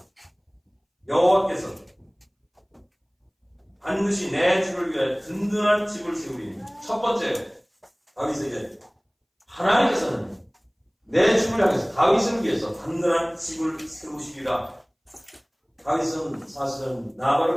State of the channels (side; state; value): both; identical; correlation 1.00